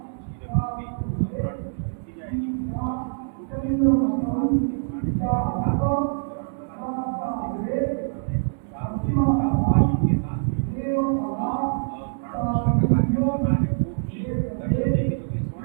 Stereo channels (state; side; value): silent; left; digital silence